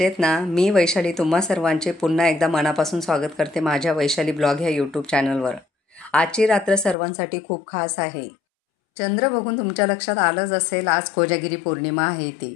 ना? मी वैशाली तुम्हा सर्वांचे पुन्हा एकदा मनापासून स्वागत करते माझ्या वैशाली ब्लॉग ह्या यूट्यूब चॅनलवर. आजची रात्र सर्वांसाठी खूप खास आहे. चंद्र बघून तुमच्या लक्षात आलंच असेल, आज कोजागिरी पौर्णिमा आहे ती.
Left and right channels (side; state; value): right; drops out; at 7.0 s